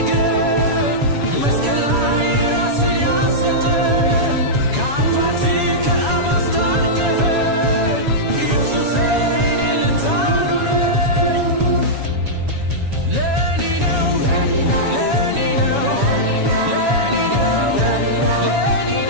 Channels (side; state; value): left; late; 7.2 ms